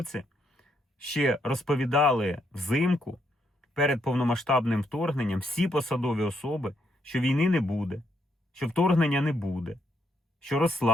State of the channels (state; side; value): normal; both; correlation 0.76